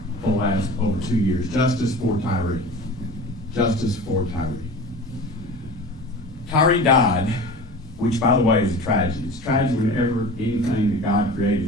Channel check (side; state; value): both; normal; correlation 0.36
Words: for the last over 2 years: justice for Tyre. Justice for Tyre. Tyre died, which, by the way, is a tragedy. It's a tragedy whenever anything that God